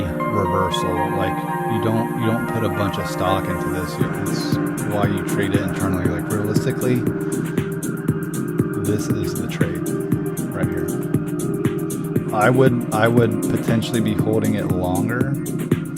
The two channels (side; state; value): both; identical; correlation 1.00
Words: reversal. Like you don't put a bunch of stock into this. It's why you trade it internally. Like realistically, this is the trade right here. I would potentially be holding it longer,